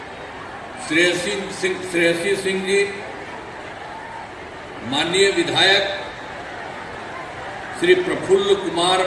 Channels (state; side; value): identical; both; correlation 1.00